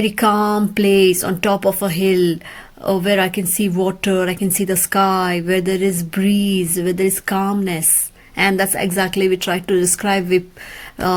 calm place on top of a hill, where I can see water, I can see the sky, where there is breeze, where there is calmness. And that's exactly we try to describe. We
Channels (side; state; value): both; identical; correlation 1.00